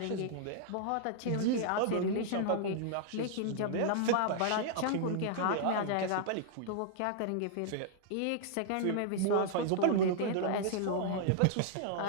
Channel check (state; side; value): different; both; correlation -0.01